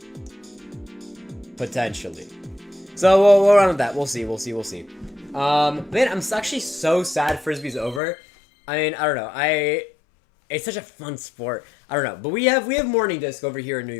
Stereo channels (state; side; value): drops out; right; at 8.0 s